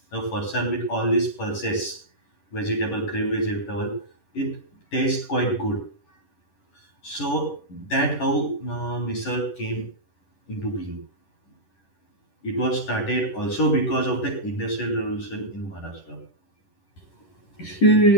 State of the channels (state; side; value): late; right; 10 ms